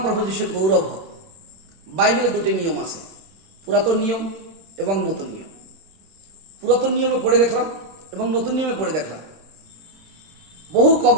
প্রভু যিশুর গৌরব হোক। বাইবেলে দুটি নিয়ম আছে, পুরাতন নিয়ম এবং নতুন নিয়ম। পুরাতন নিয়মে পড়ে দেখলাম এবং নতুন নিয়মে পড়ে দেখলাম বহু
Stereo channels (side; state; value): left; late; 26 ms